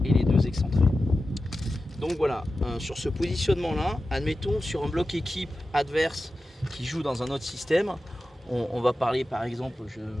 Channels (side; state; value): both; normal; correlation 0.93